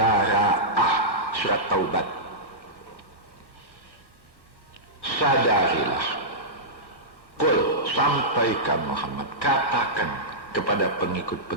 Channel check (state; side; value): late; right; 1.1 ms